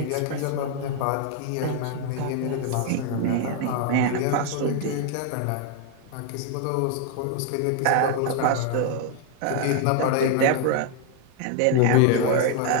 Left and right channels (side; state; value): both; different; correlation 0.00